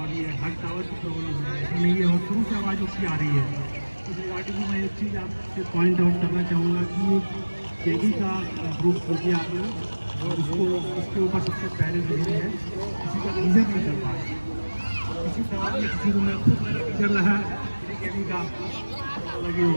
ये हर टावर की प्रॉब्लम है। ऐसा नहीं है, और शुरू से आवाज़ उसकी आ रही है। इस रिगार्डिंग में मैं एक चीज़ आपसे पॉइंट आउट करना चाहूँगा कि केगी का ग्रुप खोलिए आपने, और उसके ऊपर सबसे पहले जो है किसी का रीजन नहीं कर पा रहे, किसी सवाल में किसी को मैं खुद कर रहा है केगी का लगे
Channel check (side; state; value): both; inverted; correlation -1.00